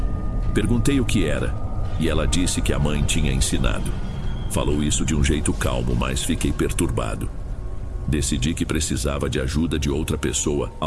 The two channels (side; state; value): both; identical; correlation 1.00